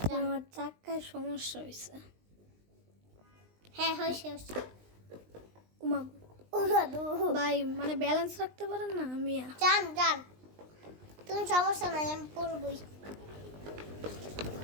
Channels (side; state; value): left; late; 20 ms